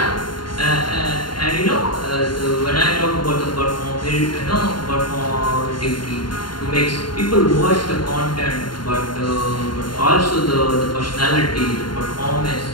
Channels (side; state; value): right; late; 0.72 ms